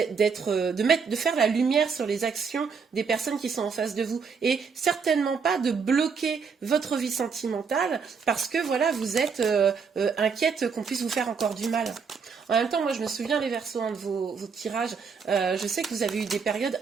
faire la lumière sur les actions des personnes qui sont en face de vous. Et certainement pas de bloquer votre vie sentimentale parce que voilà, vous êtes inquiète qu'on puisse vous faire encore du mal. En même temps, moi, je me souviens, les Verseaux, de vos tirages. Je sais que vous avez eu des périodes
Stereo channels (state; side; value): quieter; left; 5.7 dB